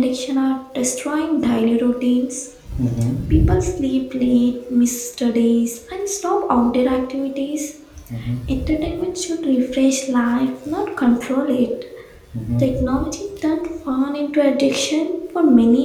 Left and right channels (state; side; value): identical; both; correlation 1.00